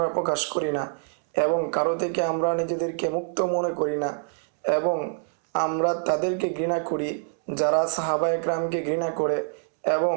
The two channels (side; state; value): left; silent; 61 dB below the other